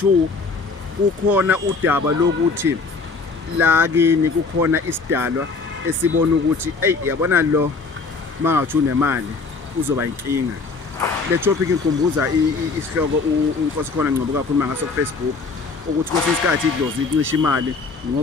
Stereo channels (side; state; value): right; quieter; 4.3 dB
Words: kukhona udaba lokuthi la kini kukhona isidalwa esibona ukuthi yabona lo mangathi unemali uzoba inkinga. Le topic inkumbuza isihloko uNkosi khona ngcobo kakhuluma ngaso ku Facebook ukuthi kwesinye isikhathi idlozi icisha imali